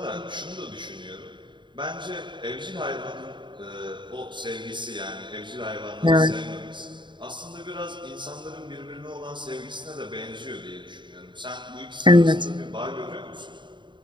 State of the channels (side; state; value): left; late; 0.23 ms